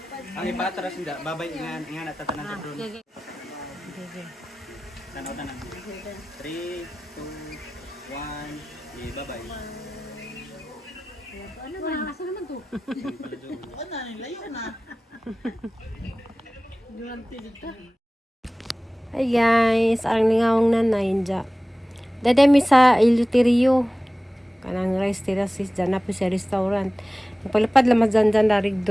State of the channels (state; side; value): normal; both; correlation 0.97